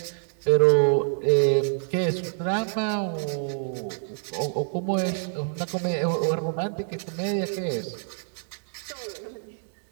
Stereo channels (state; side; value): silent; left; 59 dB below the other